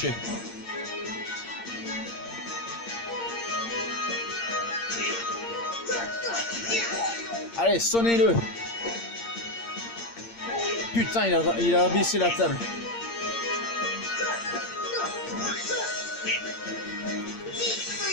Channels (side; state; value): right; late; 8.7 ms